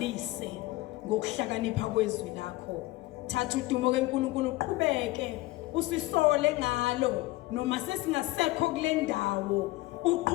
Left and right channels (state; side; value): quieter; right; 19.4 dB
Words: ngokuhlakanipha kwezwi lakho. Thatha udumo keNkulunkulu uqhubeke usisole ngalo noma sesingasekho kule ndawo.